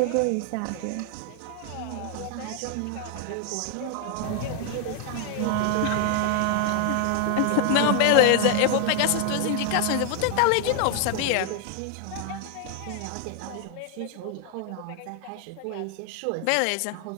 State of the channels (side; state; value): both; different; correlation 0.00